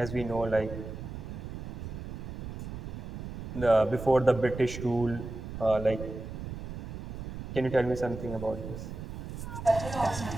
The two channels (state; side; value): noise; right; rumble, 8 dB below the sound